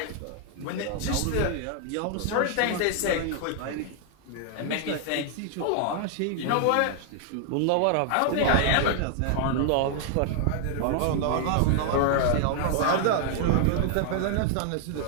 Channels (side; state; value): both; different; correlation 0.00